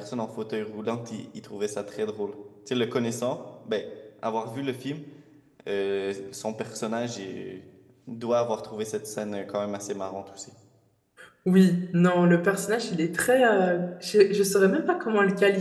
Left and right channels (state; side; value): identical; both; correlation 1.00